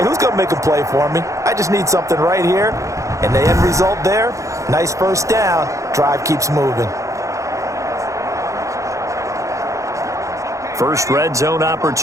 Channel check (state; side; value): late; left; 0.15 ms